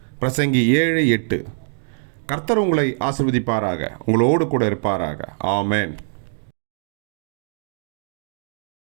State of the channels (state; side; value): silent; left; digital silence